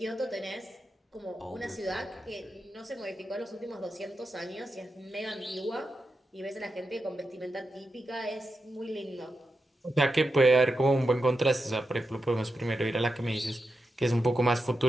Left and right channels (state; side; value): normal; both; correlation 0.88